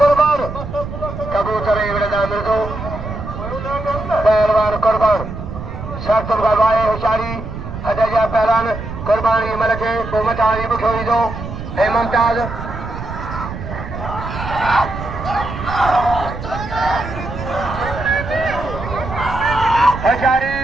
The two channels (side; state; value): right; noise; rumble, 8 dB below the sound